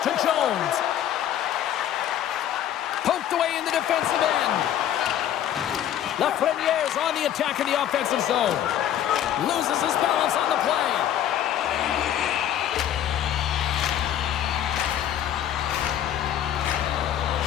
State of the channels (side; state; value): right; quieter; 10.9 dB